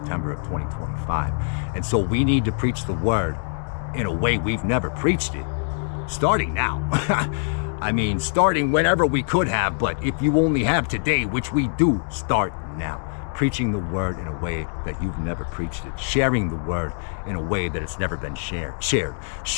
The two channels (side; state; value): right; silent; digital silence